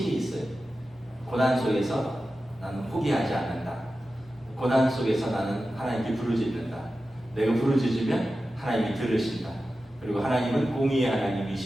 있어요. 고난 속에서 나는 포기하지 않는다. 고난 속에서 나는 하나님께 부르짖는다. 내가 부르짖으면 하나님이 들으신다. 그리고 하나님은 공의의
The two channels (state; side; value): normal; both; correlation 0.93